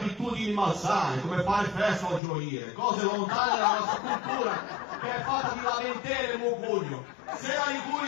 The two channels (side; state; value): right; drops out; at 2.2 s